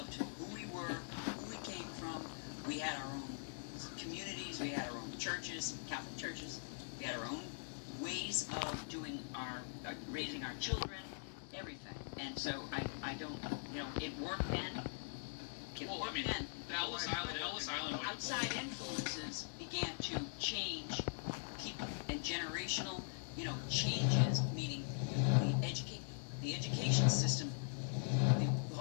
who we were, who we came from. We had our own communities, we had our own churches, Catholic churches, we had our own ways of doing raising our children, everything. And so I don't, it worked then. The Ellis Island. Outside influences began to change people and generational, changes, meaning the education system, the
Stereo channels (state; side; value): silent; right; digital silence